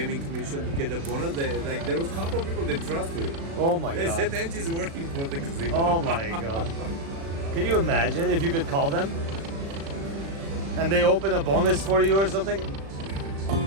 commission to get a bonus. There was a couple of people that trust me. Oh my They god. said NG is working for the casino. Oh my god. Can you imagine if you could call them and they open a bonus for you or something?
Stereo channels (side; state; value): left; late; 36 ms